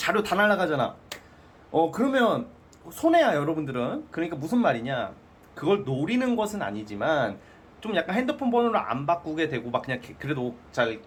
다 날라가잖아. 그러면 손해야 여러분들은. 그러니까 무슨 말이냐, 그걸 노리는 것은 아니지만 좀 약간 핸드폰 번호를 안 바꾸게 되고 막 그냥 그래도 잘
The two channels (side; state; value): both; identical; correlation 1.00